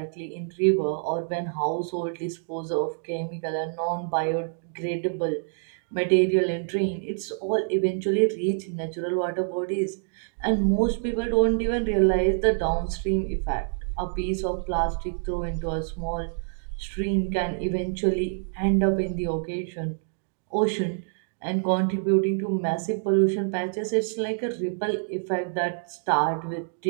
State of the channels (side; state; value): left; silent; digital silence